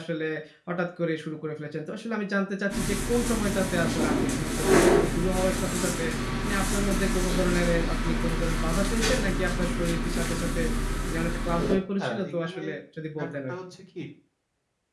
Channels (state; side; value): identical; both; correlation 1.00